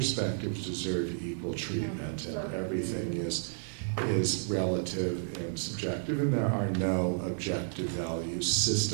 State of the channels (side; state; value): left; silent; digital silence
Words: deserve equal treatment and everything is relative and subjective, and there are no objective value